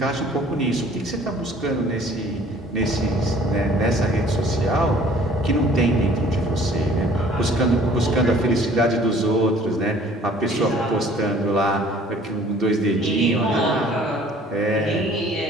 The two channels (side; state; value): both; normal; correlation 0.54